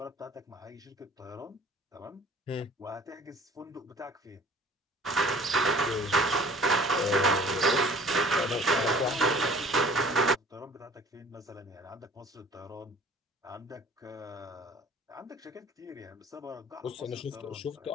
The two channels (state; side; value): normal; both; correlation 0.49